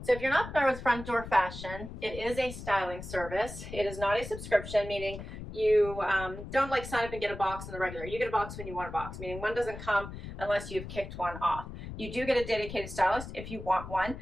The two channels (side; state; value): left; noise; rumble, 10 dB below the sound